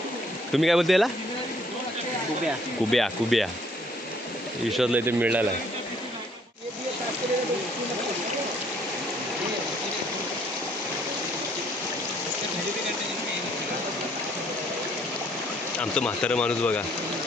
तुम्ही काय बोलता याला? कुब्या. कुब्या. विश्वासला इथे मिळाला आहे. आमचं म्हातारं माणूस बघा,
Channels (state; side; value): normal; both; correlation 0.63